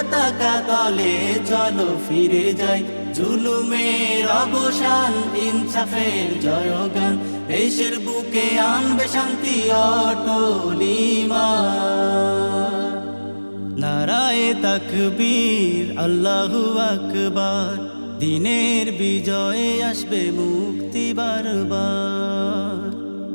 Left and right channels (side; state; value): both; inverted; correlation -1.00